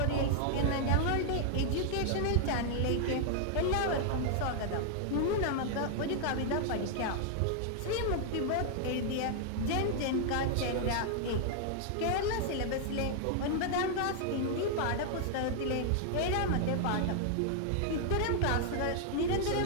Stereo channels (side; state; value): both; different; correlation 0.00